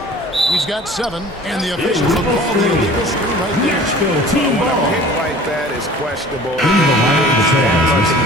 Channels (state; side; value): normal; both; correlation 0.45